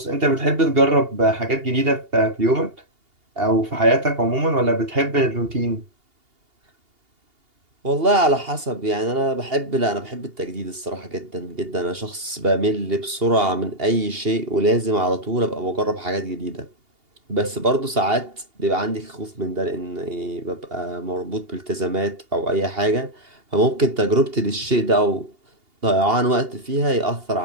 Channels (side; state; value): left; late; 2.8 ms